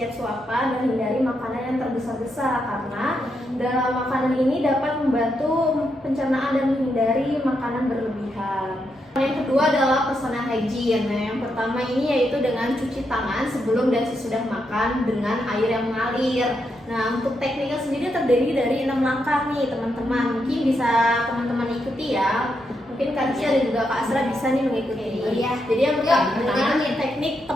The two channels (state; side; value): normal; both; correlation 0.82